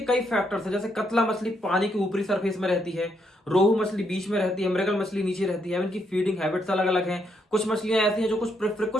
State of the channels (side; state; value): both; normal; correlation 0.76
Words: कई फैक्टर्स हैं, जैसे कतला मछली पानी के ऊपरी सरफेस में रहती है, रोहू मछली बीच में रहती है, मृगल मछली नीचे रहती है। इनकी फीडिंग हैबिट्स अलग अलग हैं। कुछ मछलियां ऐसी हैं जो